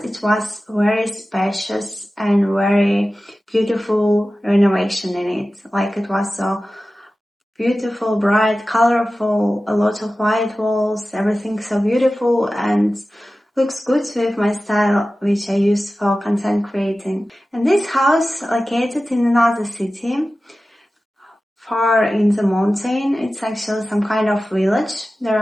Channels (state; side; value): normal; both; correlation 0.95